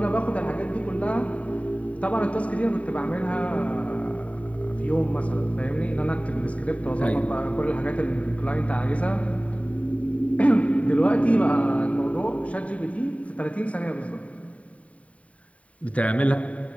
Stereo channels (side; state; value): right; late; 0.066 ms